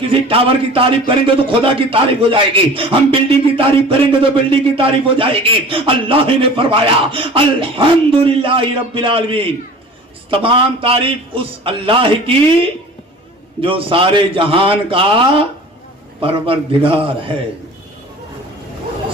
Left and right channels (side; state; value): both; normal; correlation 0.42